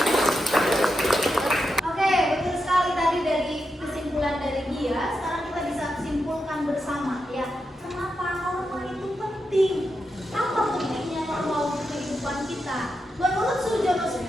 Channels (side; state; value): both; normal; correlation 0.86